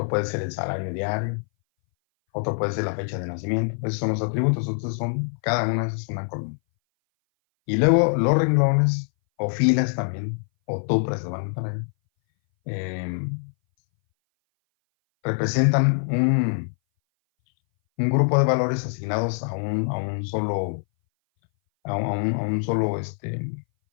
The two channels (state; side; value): silent; right; 59 dB below the other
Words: puede ser el salario diario, otro puede ser la fecha de nacimiento. Esos son los atributos, entonces cada una es una columna. Y luego los renglones, o filas también, o tuplas lo van a poner, representan un grupo de valores asignados a un solo, un solo